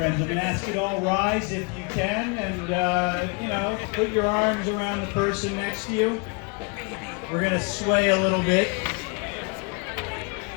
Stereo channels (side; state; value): right; quieter; 33.3 dB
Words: I'm going to ask you to all rise if you can, and, put your arms around the person next to you. We're going to sway a little bit